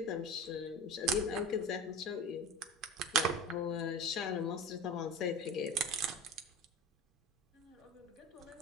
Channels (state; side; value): normal; both; correlation 0.32